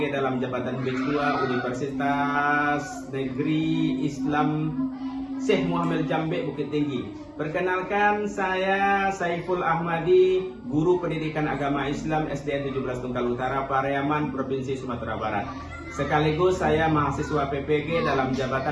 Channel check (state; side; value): identical; both; correlation 1.00